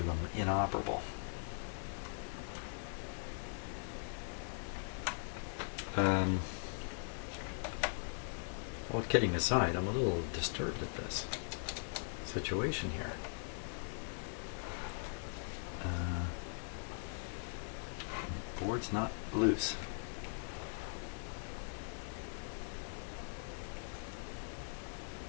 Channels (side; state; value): right; silent; digital silence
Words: them inoperable. Well, kidding aside, I'm a little disturbed at this situation here. Board's not loose.